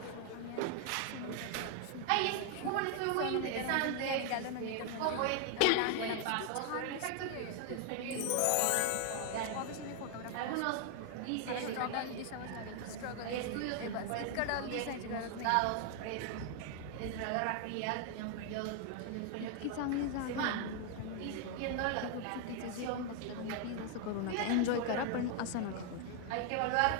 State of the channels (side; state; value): both; different; correlation 0.00